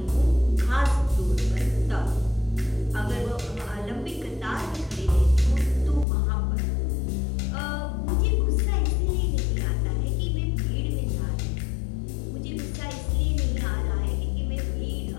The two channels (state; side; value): drops out; right; at 6.1 s